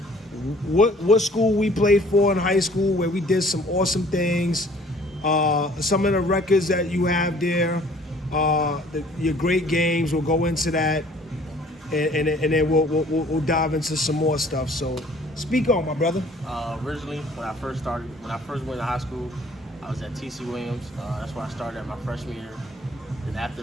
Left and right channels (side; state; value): both; normal; correlation 0.55